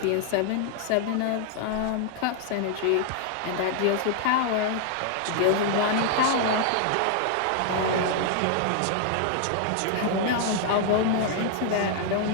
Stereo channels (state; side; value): different; both; correlation 0.00